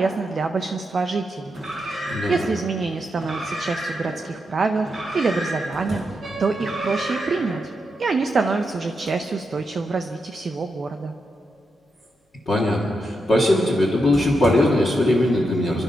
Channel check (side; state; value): both; normal; correlation 0.85